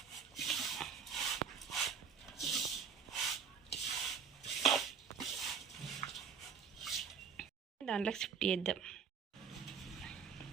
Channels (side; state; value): left; quieter; 6.4 dB